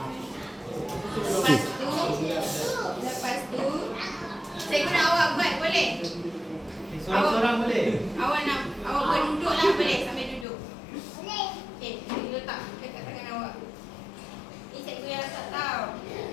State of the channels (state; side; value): drops out; right; at 10.5 s